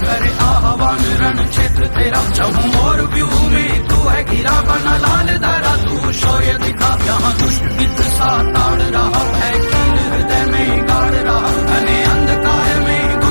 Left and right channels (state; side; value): inverted; both; correlation -1.00